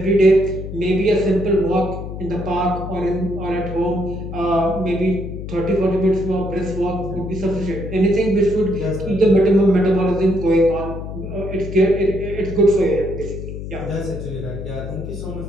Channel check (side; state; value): left; noise; hum, 8 dB below the sound